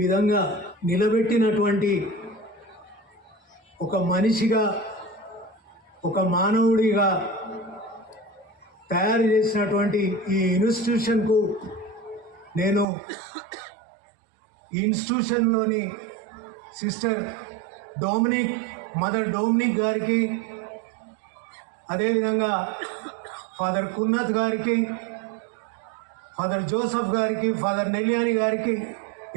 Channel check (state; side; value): drops out; left; at 12.9 s